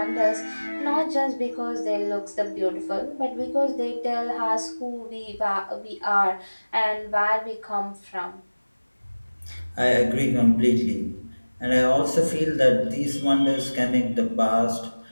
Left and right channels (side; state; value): both; inverted; correlation -1.00